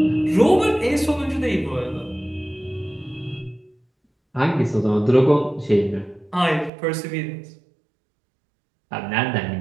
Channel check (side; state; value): left; drops out; at 6.7 s